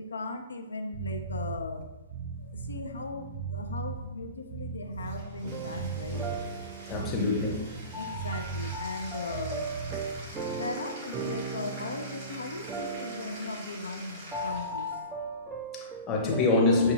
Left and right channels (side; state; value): both; inverted; correlation -0.36